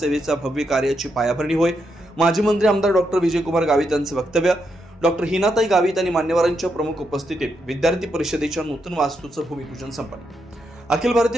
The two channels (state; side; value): normal; both; correlation 0.81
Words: भव्य कार्याची पायाभरणी होय. माजी मंत्री आमदार डॉक्टर विजयकुमार गावित यांचं वक्तव्य. डॉक्टर हिनाताई गावित आणि मान्यवरांच्या प्रमुख उपस्थितीत विद्यार्थी परिषदेच्या नूतन वास्तूचं भूमिपूजन संपन्न. अखिल